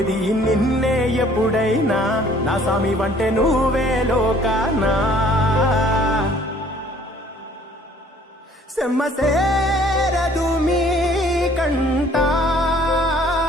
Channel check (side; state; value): both; normal; correlation 0.57